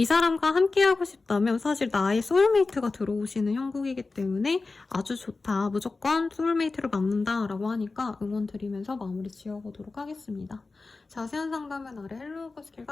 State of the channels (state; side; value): quieter; right; 3.8 dB